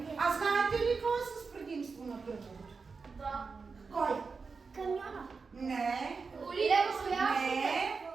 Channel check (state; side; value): quieter; left; 4.8 dB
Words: А знаете ли какво е с предимство на кръговото? Да. Кой? Камиона. Не. Не.